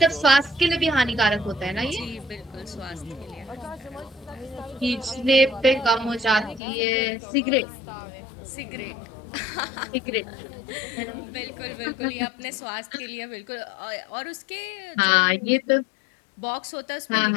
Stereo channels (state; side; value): drops out; right; at 6.6 s